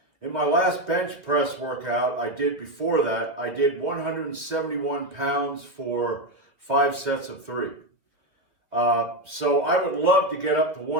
in my last bench press workout I did before that, I did 171 pounds for 5 sets of 3. So I would love to get up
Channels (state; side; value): late; left; 2.1 ms